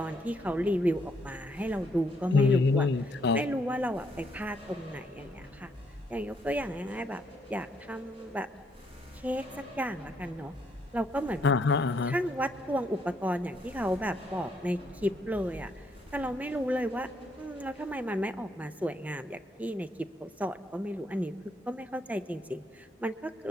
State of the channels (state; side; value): normal; both; correlation 0.72